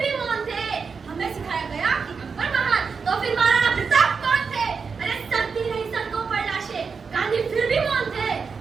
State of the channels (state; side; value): quieter; left; 5.4 dB